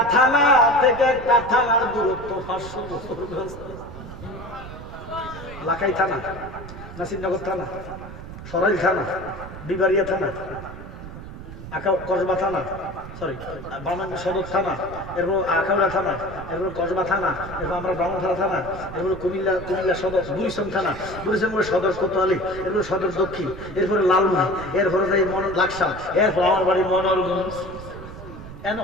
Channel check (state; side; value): noise; right; rumble, 12 dB below the sound